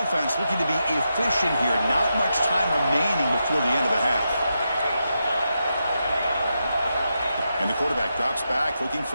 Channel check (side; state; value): both; inverted; correlation -0.86